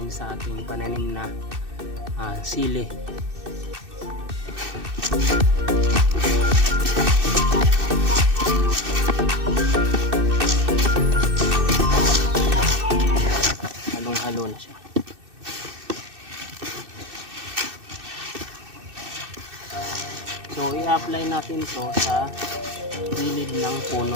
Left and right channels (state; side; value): late; left; 2.6 ms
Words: sa ating pananim na sili. Halong-halo na siya. So i-apply natin to sa gilid ng